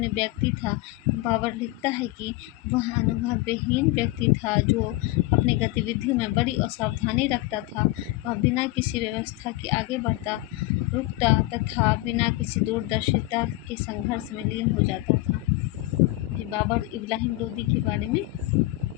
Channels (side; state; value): right; quieter; 19.2 dB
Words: व्यक्ति था। बाबर लिखता है कि वह अनुभवहीन व्यक्ति था जो अपनी गतिविधियों में बड़ी असावधानी रखता था। वह बिना किसी व्यवस्था के आगे बढ़ता, रुकता तथा बिना किसी दूरदर्शिता के संघर्ष में लीन हो जाता था। बाबर इब्राहिम लोधी के बारे में